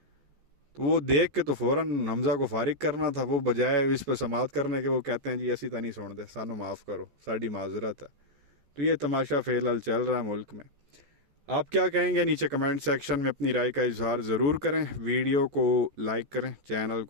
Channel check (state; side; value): late; left; 14 ms